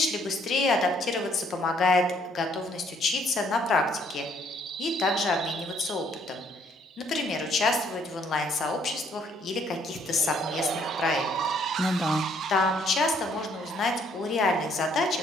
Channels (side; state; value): both; normal; correlation 0.65